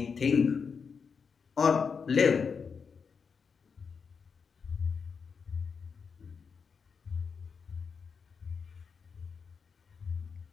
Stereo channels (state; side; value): quieter; right; 5.8 dB